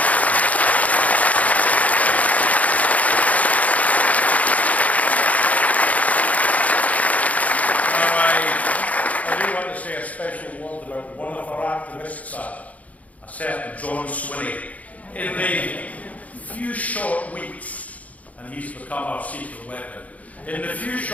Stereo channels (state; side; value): late; right; 0.071 ms